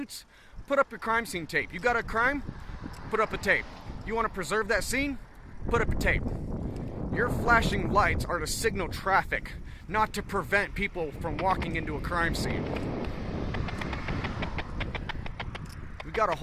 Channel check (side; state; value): both; identical; correlation 1.00